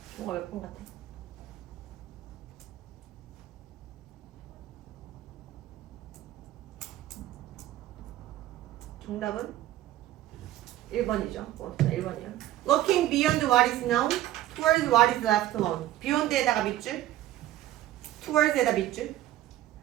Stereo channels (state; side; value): quieter; left; 14.2 dB